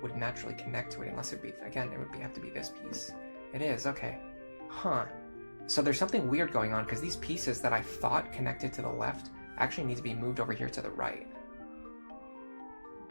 would naturally connect to it unless it would be, again, it would have to be this piece. It is, okay. Huh. So there's something weird going on because these pieces that I thought connected to the left actually need to be moved over here to the right.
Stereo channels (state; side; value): inverted; both; correlation -1.00